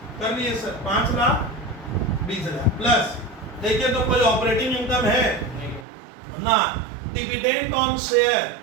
कर लिए सर, 5,20,000 प्लस। देखिए तो कोई ऑपरेटिंग इनकम है ना, डिविडेंड ऑन शेयर,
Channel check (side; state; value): left; drops out; at 5.9 s